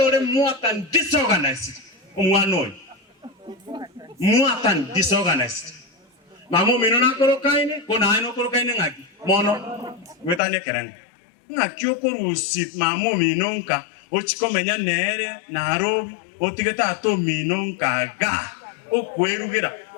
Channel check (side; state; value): right; drops out; at 10.4 s